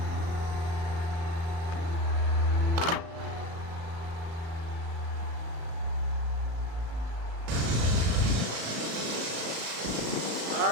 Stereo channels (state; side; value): late; left; 36 ms